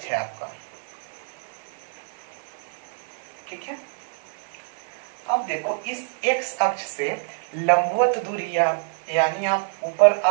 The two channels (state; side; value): silent; left; 61 dB below the other